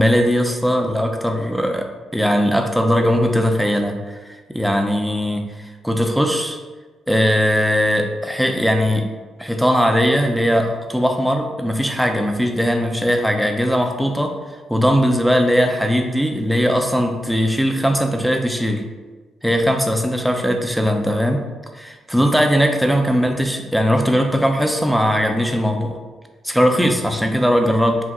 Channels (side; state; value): both; normal; correlation 0.92